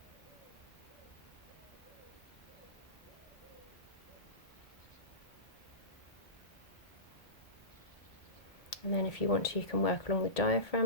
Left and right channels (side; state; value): right; late; 1.8 ms